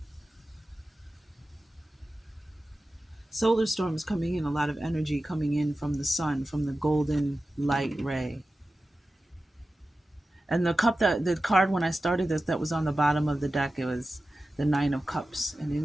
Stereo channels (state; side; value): normal; both; correlation 0.94